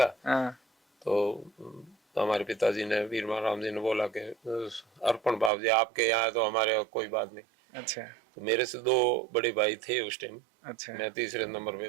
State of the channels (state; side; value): drops out; left; at 5.5 s